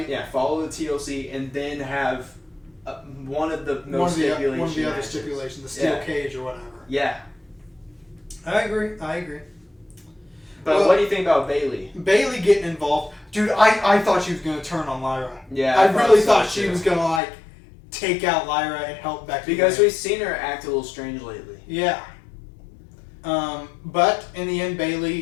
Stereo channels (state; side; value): drops out; right; at 17.2 s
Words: Yeah, follow the TLC and then have one of the no stipulation one of the other matches. stipulations, the steel cage or whatever. Yeah, I agree. But what do you think about Bayley? Bayley getting involved, dude. I thought she was going to turn on Lyra. Yeah, I really thought she was going to like take out Lyra and help Becky. Because we've seen her act a little strange lately. Yeah. But in the end,